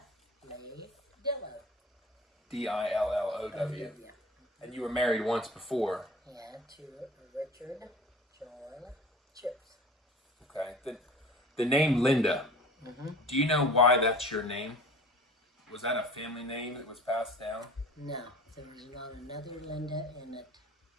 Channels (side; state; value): both; normal; correlation 0.42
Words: Lee Dillow. D-I-L-L-O-W. Yeah. And you were married once before. Yeah, to Richard John Chips. Okay. The name Linda. Mm-hmm. Do you know why that's your name? Was that a family name that was passed down? No, there was not another Linda in it.